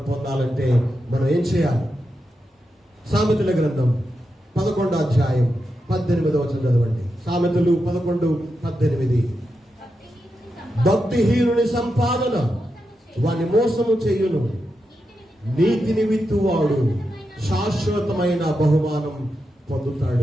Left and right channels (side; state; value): both; normal; correlation 0.87